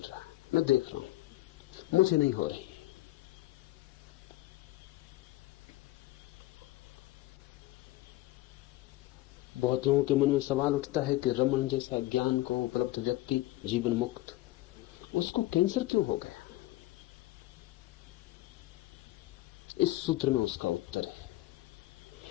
है, मैं देख रहा हूं, मुझे नहीं हो रही। बहुत लोगों के मन में सवाल उठता है कि रमन जैसा ज्ञान को उपलब्ध व्यक्ति जीवन मुक्त, उसको कैंसर क्यों हो गया? इस सूत्र में उसका उत्तर है,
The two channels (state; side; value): quieter; right; 17.2 dB